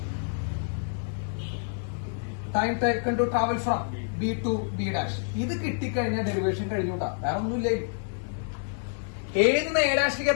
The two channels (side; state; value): right; silent; digital silence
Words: B to B dash. ഇത് കിട്ടിക്കഴിഞ്ഞാൽ ഡെറിവേഷൻ കഴിഞ്ഞൂട്ടാ, വേറെ ഒന്നുമില്ല. എ നിന്ന് എ ഡാഷിലേക്ക്